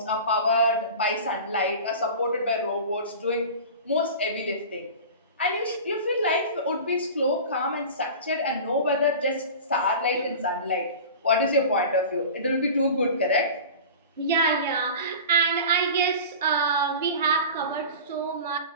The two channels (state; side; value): inverted; both; correlation -0.35